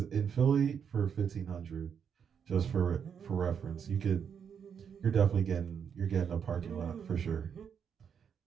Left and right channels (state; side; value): quieter; left; 7.4 dB